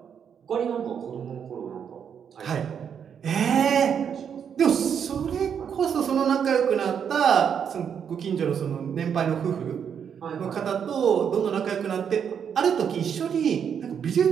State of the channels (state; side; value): quieter; left; 7.7 dB